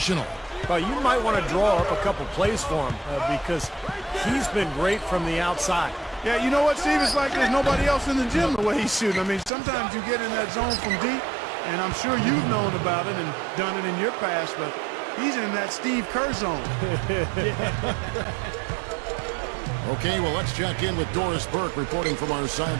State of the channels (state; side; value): drops out; left; at 9.5 s